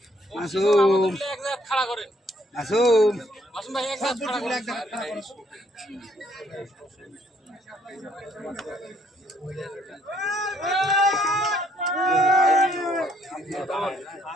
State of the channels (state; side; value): normal; both; correlation 0.67